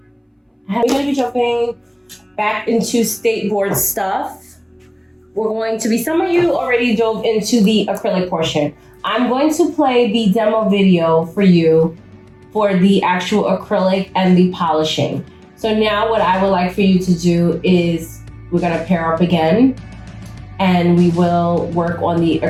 We're going to be jumping back into state board stuff. We're going to be, some of you already dove into the acrylic portion. I'm going to play the demo video for you for the actual acrylic and the polishing. So now what I would like for you to do is we're going to pair up again and we will work on the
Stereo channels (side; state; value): both; identical; correlation 1.00